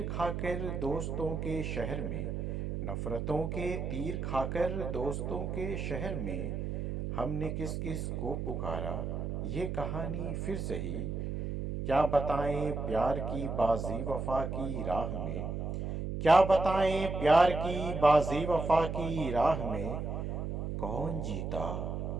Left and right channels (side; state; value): right; noise; hum, 3 dB below the sound